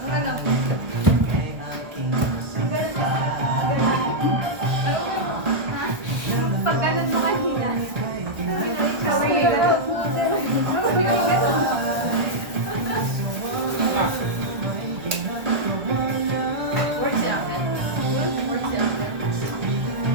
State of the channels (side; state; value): left; late; 1.4 ms